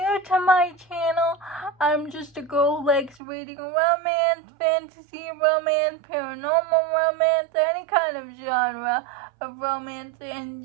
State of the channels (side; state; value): left; drops out; at 3.2 s